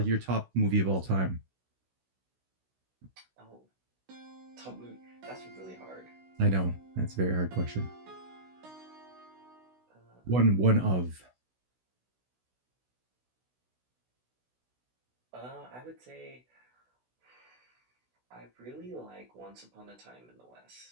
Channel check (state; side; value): late; left; 16 ms